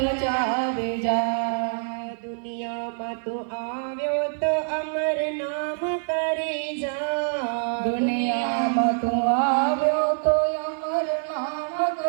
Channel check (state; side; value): silent; left; 56 dB below the other